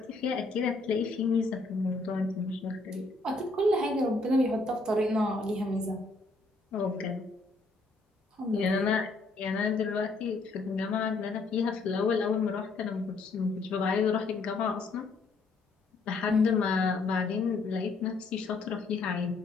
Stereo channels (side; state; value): right; quieter; 3.5 dB